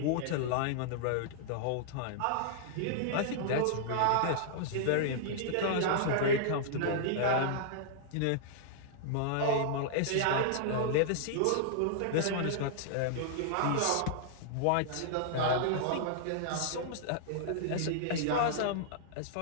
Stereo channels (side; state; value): both; different; correlation -0.01